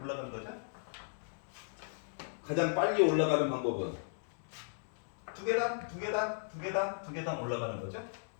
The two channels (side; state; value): right; silent; digital silence